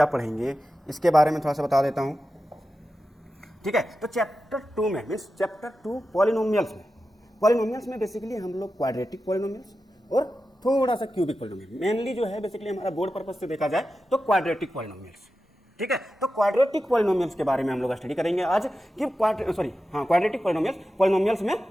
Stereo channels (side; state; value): both; normal; correlation 0.92